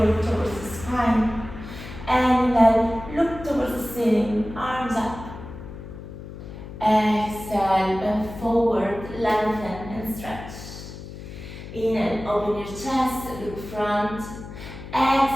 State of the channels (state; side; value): noise; left; hum, 12 dB below the sound